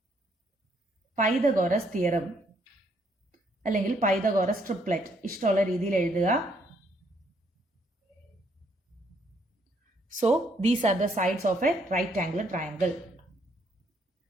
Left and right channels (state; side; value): normal; both; correlation 0.70